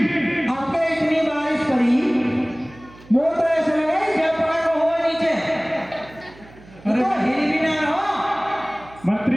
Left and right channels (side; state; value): right; noise; hum, 22 dB below the sound